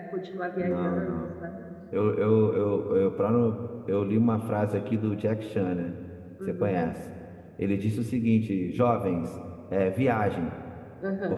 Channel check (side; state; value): both; identical; correlation 1.00